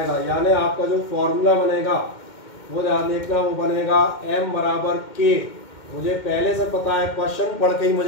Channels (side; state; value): right; late; 2.1 ms